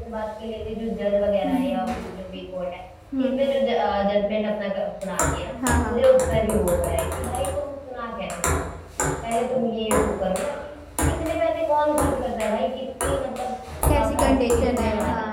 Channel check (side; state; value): both; identical; correlation 1.00